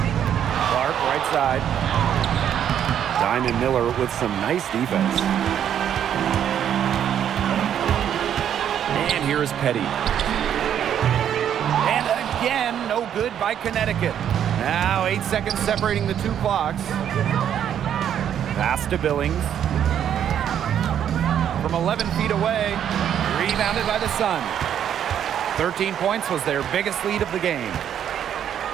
Clark, right side. Diamond Miller with some nice defense. And here's Petty. And again, no good by Connecticut. Now 8 seconds separating the two clocks. Pass to Billings. From 11 feet away, rebounded by the Sun. 13 points was their biggest lead of the game.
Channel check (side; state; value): left; quieter; 9.6 dB